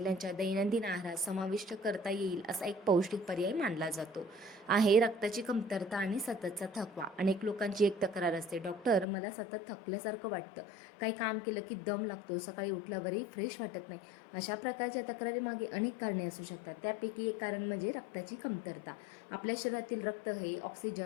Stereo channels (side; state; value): right; drops out; at 9.1 s